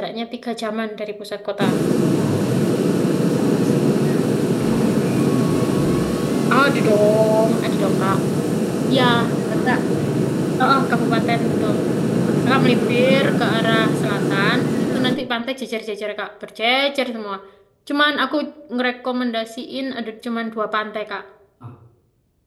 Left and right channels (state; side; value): identical; both; correlation 1.00